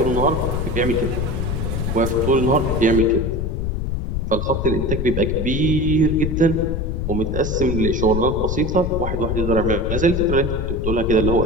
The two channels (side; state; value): left; noise; rumble, 2 dB below the sound